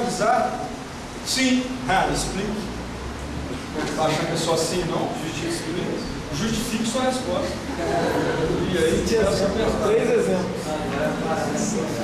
Sim. Explique. Não está achando que é só assim, não? Justifique sua resposta. E aí, três exemplos.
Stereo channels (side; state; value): both; identical; correlation 1.00